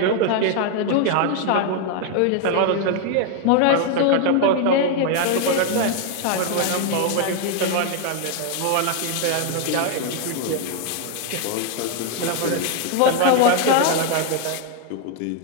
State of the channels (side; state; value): both; different; correlation 0.00